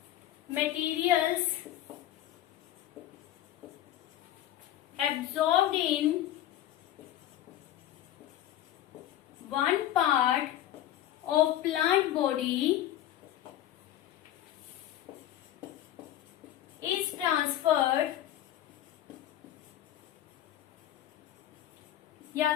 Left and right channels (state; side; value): quieter; right; 12.4 dB